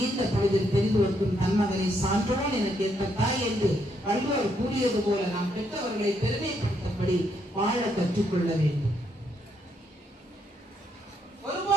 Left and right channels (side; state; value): both; normal; correlation 0.75